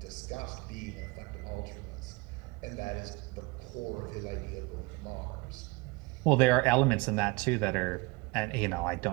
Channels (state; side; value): quieter; left; 25.0 dB